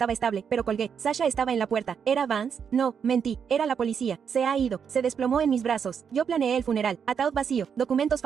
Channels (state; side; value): quieter; left; 7.1 dB